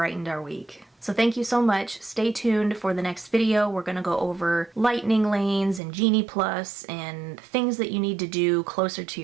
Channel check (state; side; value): drops out; left; at 5.8 s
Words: our week. So thank you so much. Stay tuned for the next video. We're gonna go over lightning lanes and Genie Plus and things that you need to do closer to